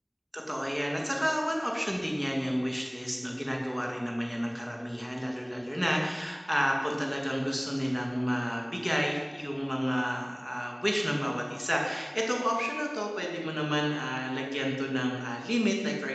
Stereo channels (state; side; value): identical; both; correlation 1.00